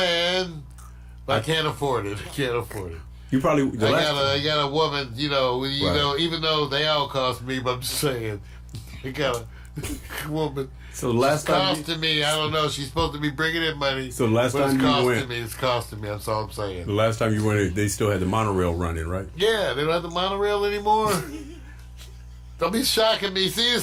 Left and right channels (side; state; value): both; identical; correlation 1.00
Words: but I can't afford it. I can't afford it. You probably. I got a woman. You know. You know. Even though they all cost me, but I'm just saying, I got a woman. So the last It's time, costing me. I don't know. She's supposed to be bringing in money. So last but time it's you costing went- me. It's costing me. That's all I'm saying. the last time you went, they still had the monorail running, right? Yeah, they don't have the monorail anymore. Don't be shocking me. See,